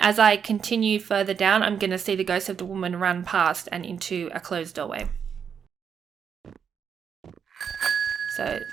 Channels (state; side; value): quieter; left; 7.2 dB